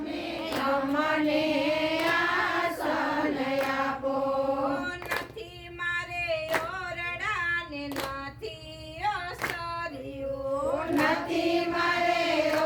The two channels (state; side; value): identical; both; correlation 1.00